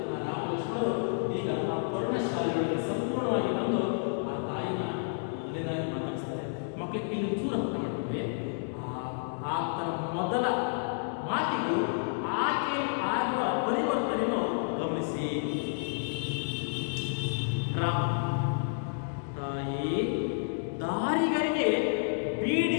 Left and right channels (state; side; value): silent; right; digital silence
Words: ರಾಮ ಲಕ್ಷ್ಮಣರು ಈಗ ಆ ಪರ್ಣಶಾಲೆಗಳಿಗೆ ಸಂಪೂರ್ಣವಾಗಿ ಬಂದು ಆ ತಾಯಿನ ಮೊದಲನೇದಾಗಿ ಮಾತಾಡಿಸ್ತಾರೆ. ಮಕ್ಕಳಿಗೆ ಇಲ್ಲಿ ಚೂರು ಅರ್ಥ ಮಾಡ್ತೀವಿ. ಆತನ ಮೊದಲ ಮಾತಿಗೂ ಆಕೆ ಆಗುವ ಪರಿವರ್ತನೆಯನ್ನು ಗಮನಿಸಿ. ರಾಮ, ತಾಯಿ ದಾರಿಗರಿಗೆ